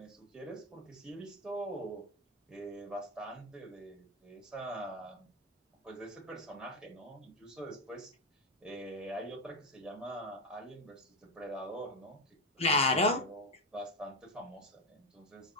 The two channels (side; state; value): both; normal; correlation 0.10